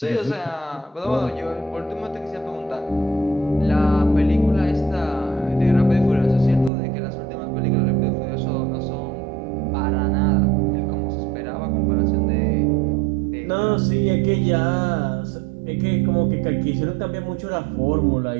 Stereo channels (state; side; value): drops out; left; at 6.7 s